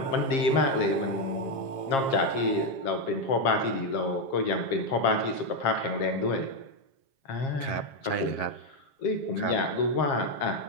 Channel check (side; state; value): right; late; 7.4 ms